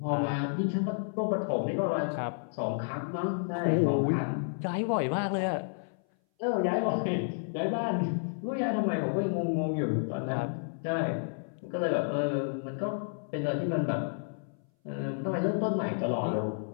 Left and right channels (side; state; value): right; silent; 57 dB below the other